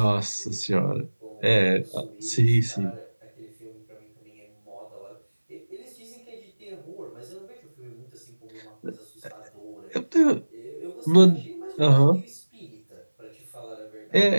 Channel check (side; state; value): both; inverted; correlation -1.00